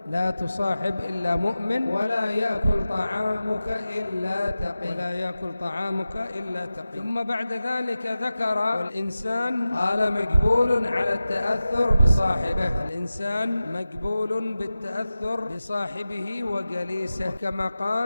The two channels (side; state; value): both; inverted; correlation -0.95